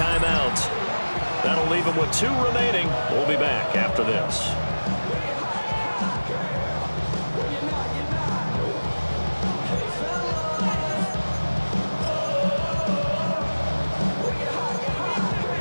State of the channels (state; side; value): inverted; both; correlation -1.00